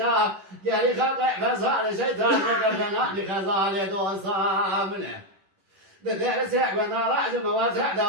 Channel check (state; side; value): late; left; 11 ms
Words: قال لي خاطئ فسال الشيطان وقدنا لخزال دوصامنه بدأ سعب نراج مواسع